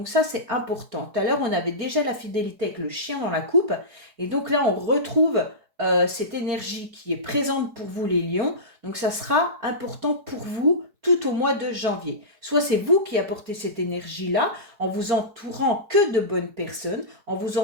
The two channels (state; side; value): late; left; 4.7 ms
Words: ça, c'est important. Tout à l'heure, on avait déjà la fidélité avec le chien dans la coupe et donc là, on retrouve cette énergie qui est présente pour vous, les lions. Donc ça sera important pour vous tout au mois de janvier. Soit c'est vous qui apportez cette énergie-là en vous entourant que de bonnes personnes, en